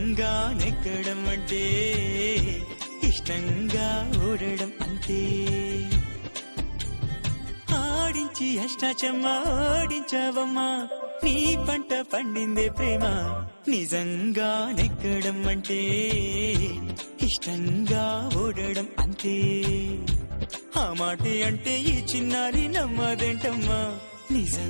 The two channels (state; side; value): inverted; both; correlation -1.00